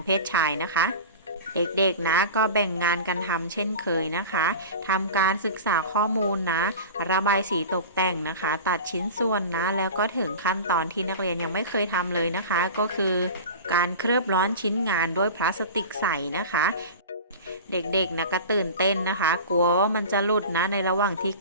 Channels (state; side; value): inverted; both; correlation -0.33